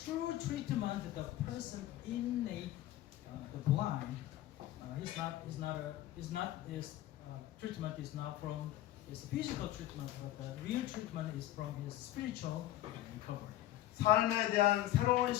treatment, the person innate, the blind, his treatment is not from his physical treatment, but the real treatment is from his spiritual recovery. 삶에 대한 새로운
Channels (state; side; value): quieter; right; 14.3 dB